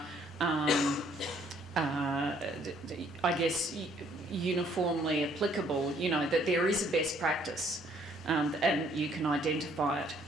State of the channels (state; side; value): normal; both; correlation 0.64